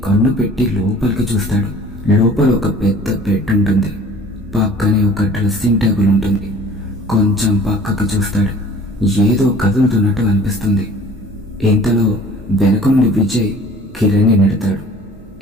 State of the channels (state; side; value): normal; both; correlation 0.48